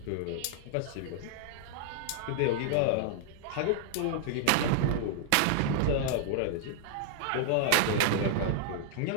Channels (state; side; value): different; both; correlation -0.01